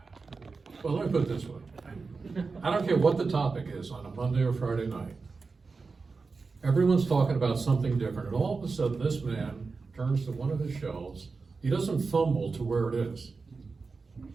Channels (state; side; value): quieter; left; 4.4 dB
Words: well, let me put it this way. I don't care what the topic is on a Monday or Friday night. Everyone's talking about something different, and all of a sudden this man turns to one of his shelves. He doesn't fumble to where it is.